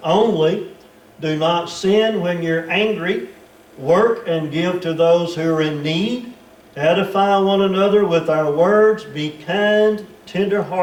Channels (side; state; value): both; identical; correlation 1.00